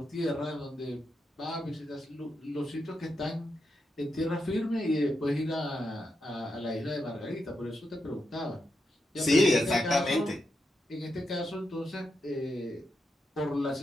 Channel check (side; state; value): both; normal; correlation 0.85